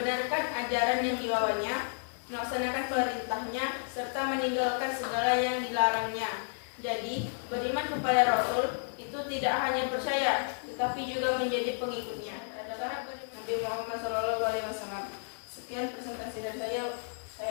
ajaran yang dibawanya, melaksanakan perintahnya, serta meninggalkan segala yang dilarangnya. Jadi, beriman kepada Rasul itu tidak hanya percaya, tetapi juga menjadi pengikutnya. Adalah Nabi Muhammad SAW. Sekian presentasi dari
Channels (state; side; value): silent; right; digital silence